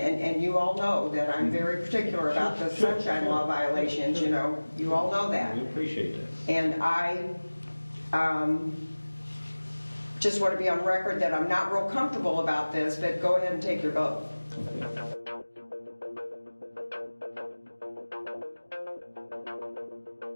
you all know that I'm very particular about the sunshine law violations, you all know that. We appreciate that. And I just want to be on record that I'm not real comfortable about this, but go ahead and take your vote. Okay.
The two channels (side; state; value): both; inverted; correlation -1.00